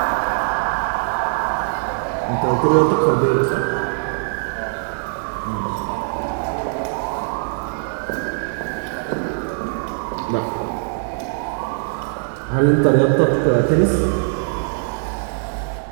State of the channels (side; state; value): left; silent; digital silence